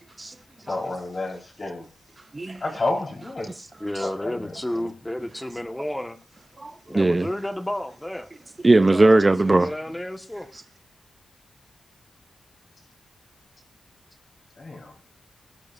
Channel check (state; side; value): normal; both; correlation 0.98